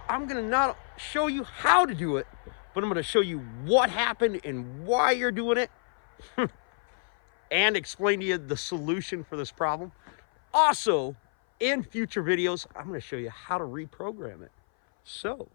I'm going to not show you how to do it, but I'm going to show you what happened and why you're doing it and explain to you the solution for this problem. Also, in future videos, I'm going to show you how to reprogram it so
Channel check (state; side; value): silent; right; 57 dB below the other